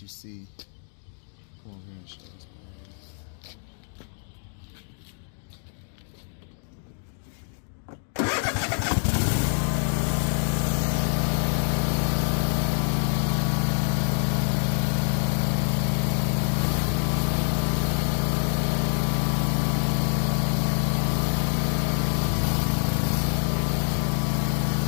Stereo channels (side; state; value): right; silent; 61 dB below the other